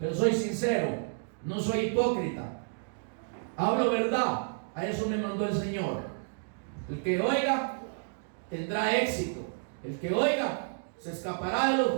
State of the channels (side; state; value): left; silent; digital silence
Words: soy sincero. No soy hipócrita. Hablo verdad. A eso me mandó el Señor. El que oiga tendrá éxito. El que oiga se escapará de los